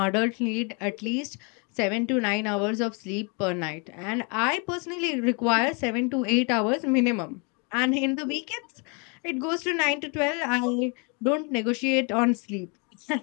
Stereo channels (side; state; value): right; quieter; 33.8 dB